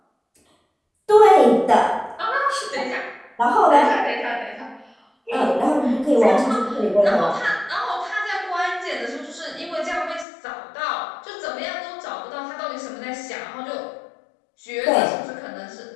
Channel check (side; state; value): right; drops out; at 10.2 s